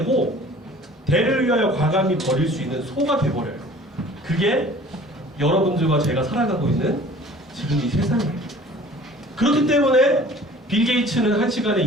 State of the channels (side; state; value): both; normal; correlation 0.47